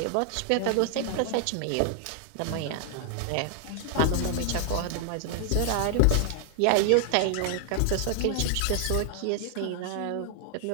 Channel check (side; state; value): both; different; correlation 0.00